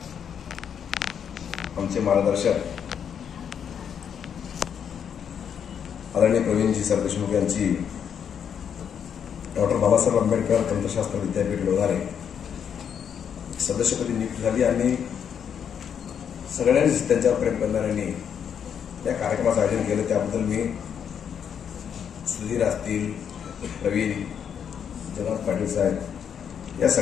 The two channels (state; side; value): quieter; right; 8.0 dB